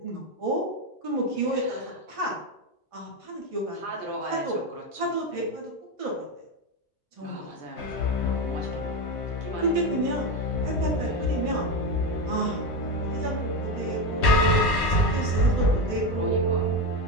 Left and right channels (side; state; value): both; normal; correlation 0.15